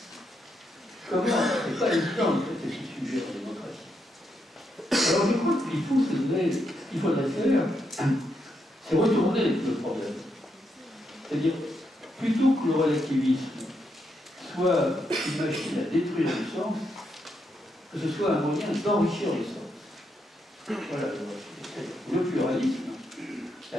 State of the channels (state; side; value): normal; both; correlation 0.80